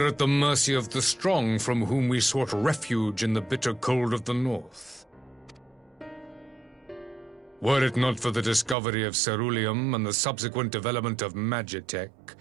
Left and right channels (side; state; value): left; drops out; at 8.8 s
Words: at the mercy of the strong from whom we sought refuge in the bitter cold of the north. Were it not for the discovery of ceruleum and the subsequent development of magitech,